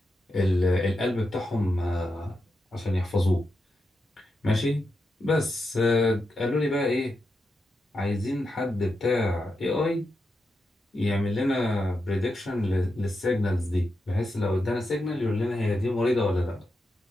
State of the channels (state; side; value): normal; both; correlation 0.86